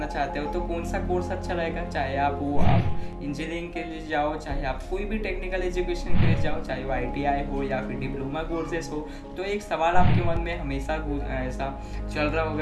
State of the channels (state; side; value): identical; both; correlation 1.00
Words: चाहते हो तो कौन सा कोर्स अच्छा रहेगा, चाहे आप इंजीनियरिंग के लिए जाओ, चाहे आप कोई भी टेक्निकल एजुकेशन के लिए जाओ, चाहे वो ITI हो या फिर डिप्लोमा कोर्सेस हो। तो एक सवाल आपके मन में हमेशा ऐसा चल रहा